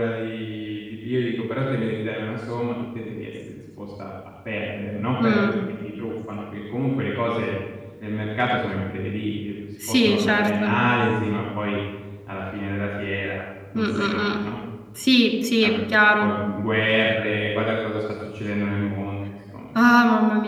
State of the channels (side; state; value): both; identical; correlation 1.00